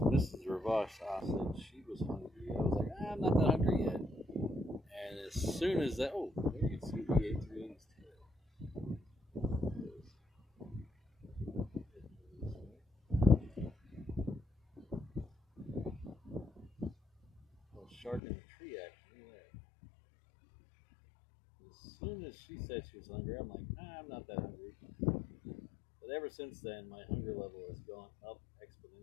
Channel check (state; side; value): drops out; right; at 18.2 s